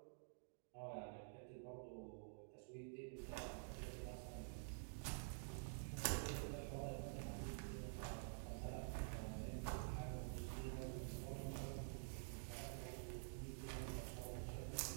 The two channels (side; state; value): left; silent; digital silence